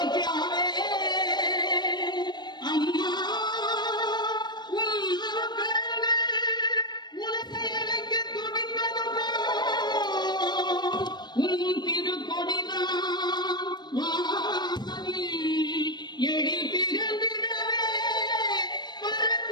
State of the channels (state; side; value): late; right; 0.21 ms